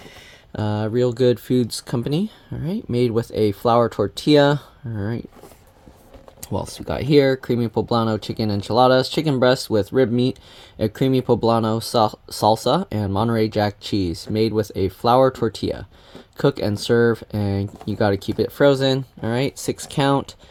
Realgood Foods Company. Alright, made with a flour tortilla. Alright. What else we got here? Creamy Poblano chicken enchiladas, chicken breast with rib meat, a creamy Poblano salsa, and Monterey Jack cheese, made with a flour tortilla. Cook and serve, and you got to keep it frozen. All right, 6 count.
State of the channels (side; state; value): both; identical; correlation 1.00